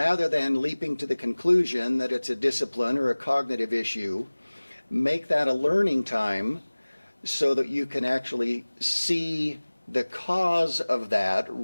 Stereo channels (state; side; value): inverted; both; correlation -1.00